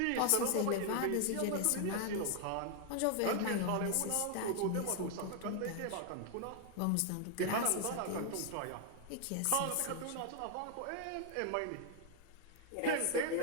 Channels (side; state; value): both; different; correlation 0.00